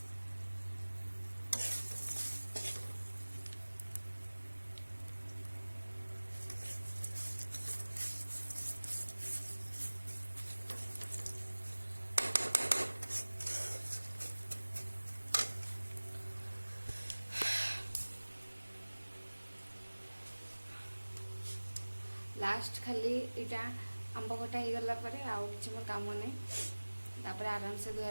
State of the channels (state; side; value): inverted; both; correlation -1.00